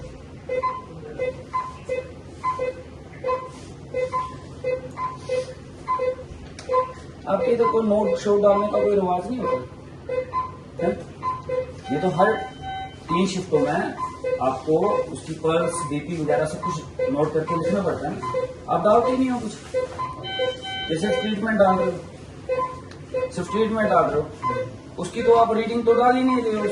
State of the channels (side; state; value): both; identical; correlation 1.00